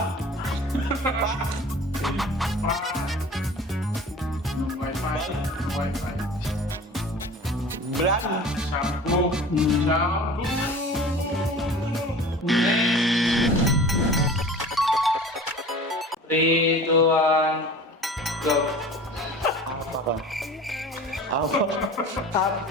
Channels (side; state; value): both; normal; correlation 0.40